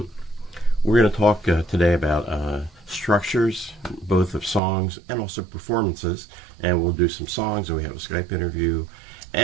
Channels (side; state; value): left; drops out; at 4.6 s